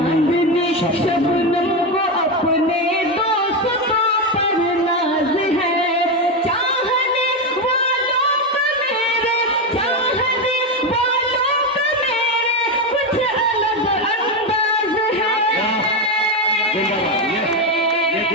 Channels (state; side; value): normal; both; correlation 0.11